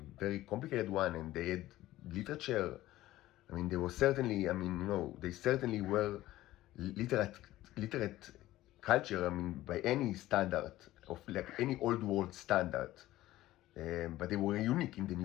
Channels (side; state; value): right; quieter; 15.7 dB